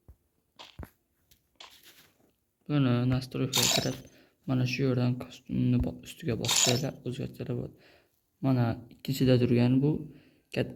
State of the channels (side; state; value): both; identical; correlation 1.00